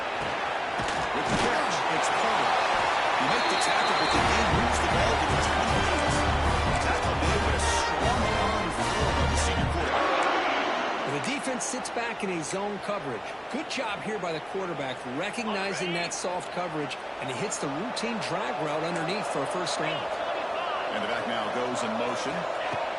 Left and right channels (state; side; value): identical; both; correlation 1.00